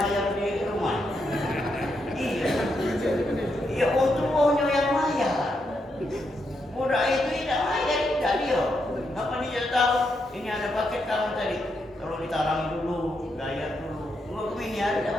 di rumah. Iya. Ya untungnya yang bayar. Budak itu tidak bayar, tidak dia. Apa dia tahu? Ini ada paket kamu tadi. Kalau ditarangi dulu, bayar dulu. Enggak ini ada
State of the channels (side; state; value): both; normal; correlation 0.81